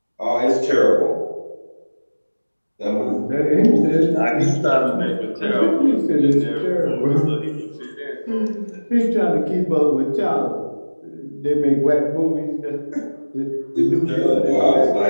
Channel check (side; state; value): both; inverted; correlation -1.00